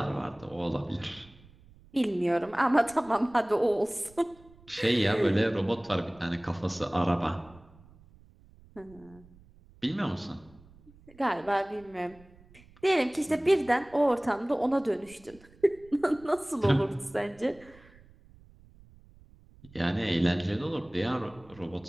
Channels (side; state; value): right; noise; rumble, 25 dB below the sound